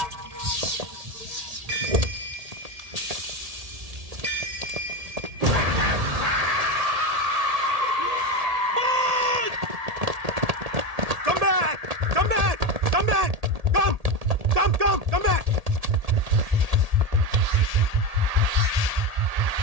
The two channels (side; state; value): left; late; 1.8 ms